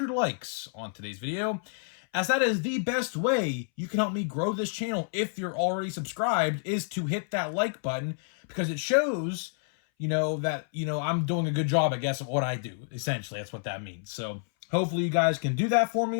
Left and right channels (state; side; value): silent; right; 59 dB below the other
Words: likes on today's video, as that is the best way you can help me grow this channel if you're already subscribed, is to hit that like button, because it shows, that, I'm doing a good job, I guess, of what I do. Essentially, that's what that means. So hopefully you guys can do that for